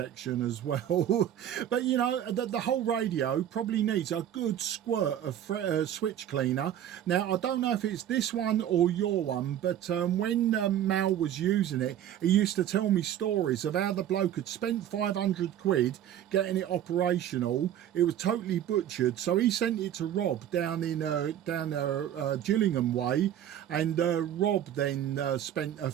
as well. But, you know, the whole radio probably needs a good squirt of switch cleaner. Now, I don't know if it's this one or your one, but when Mal was using it, he used to tell me stories of how the bloke had spent 500 quid getting it operational. It was totally butchered. So he sent it to Rob down Gillingham way. And Rob then spent a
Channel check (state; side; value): quieter; left; 10.8 dB